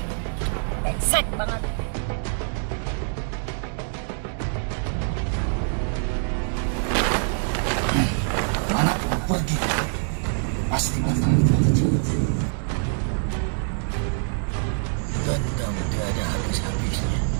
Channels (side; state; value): left; silent; digital silence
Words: Brengsek banget. Mana pun pergi, pasti akan terjadi. Dendam tiada habis-habisnya.